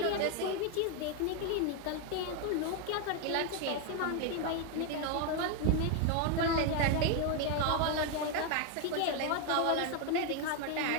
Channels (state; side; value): different; both; correlation 0.01